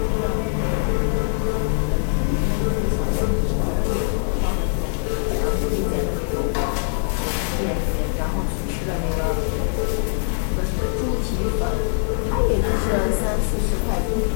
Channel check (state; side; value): silent; right; 64 dB below the other